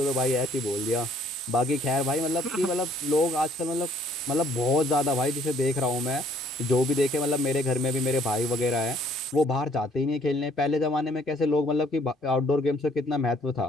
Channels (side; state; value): both; normal; correlation 0.62